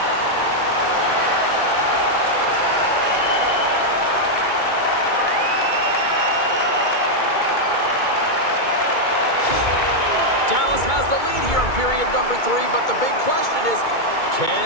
Dallas has the lead here in period number 3, but the big question is, can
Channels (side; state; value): right; late; 2.2 ms